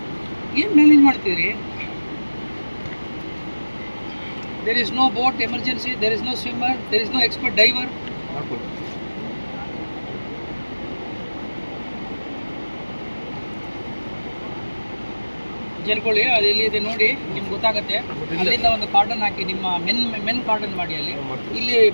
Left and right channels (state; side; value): inverted; both; correlation -1.00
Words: ಏನು ಮ್ಯಾನೇಜ್ ಮಾಡ್ತೀರಿ? There is no boat emergency, there is no swimmer, there is no expert diver. ಜಲ್ಕೊಳ್ಳಿ, ಅದು ಎಲ್ಲಿದೆ ನೋಡಿ, ನಿಮ್ಗೆ ಗೊತ್ತಾಗುತ್ತೆ. ಅಲ್ಲಿಂದ ಒಂದು ಕಾರ್ಡನ್ ಹಾಕಿ, ನಿಮ್ಮ ಮೆನ್ ಕಾರ್ಡನ್ ಮಾಡಿ ಅಲ್ಲಿ. ಇಲ್ಲಿ